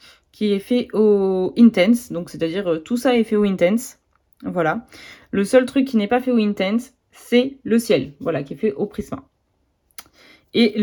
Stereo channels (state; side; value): identical; both; correlation 1.00